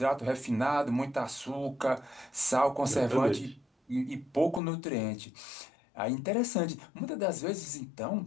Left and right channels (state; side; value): drops out; right; at 4.6 s